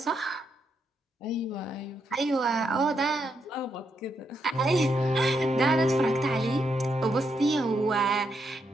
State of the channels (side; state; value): both; normal; correlation 0.80